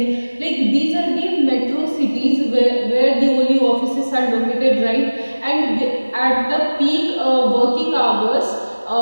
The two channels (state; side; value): inverted; both; correlation -1.00